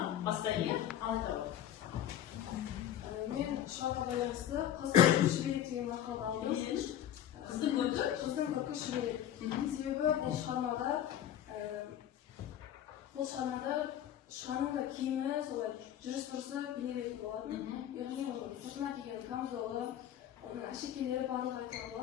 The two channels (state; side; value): quieter; right; 11.0 dB